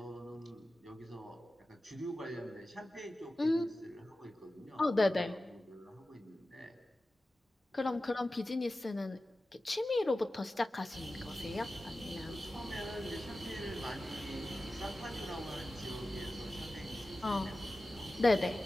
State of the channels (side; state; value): both; normal; correlation 0.94